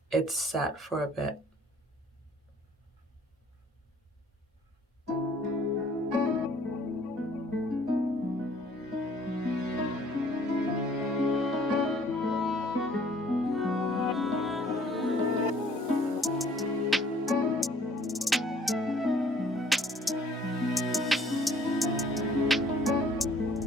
it's sat for a bit.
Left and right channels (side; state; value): both; normal; correlation 0.58